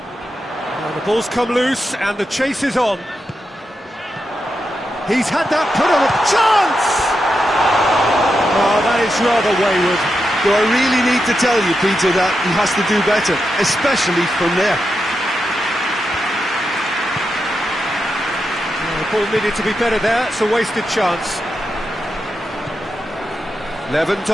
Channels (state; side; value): normal; both; correlation 0.87